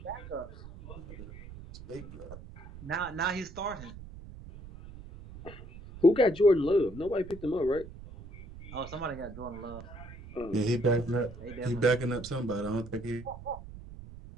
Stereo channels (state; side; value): noise; right; rumble, 14 dB below the sound